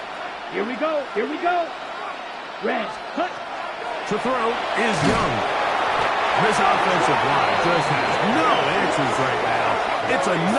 Here we go. Here we go. Red. Cut. To throw is Young. This offensive line just has no answers right now. It's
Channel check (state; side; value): identical; both; correlation 1.00